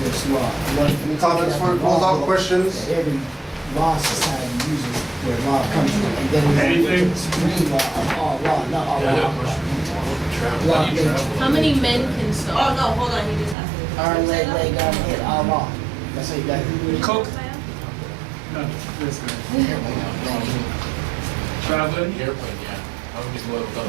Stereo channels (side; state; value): left; drops out; at 13.6 s